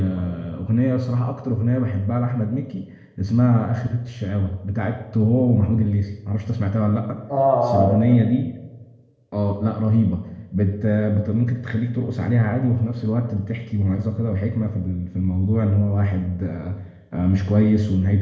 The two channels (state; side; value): identical; both; correlation 1.00